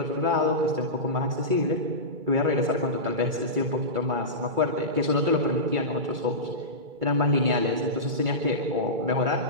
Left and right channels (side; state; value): left; late; 2.3 ms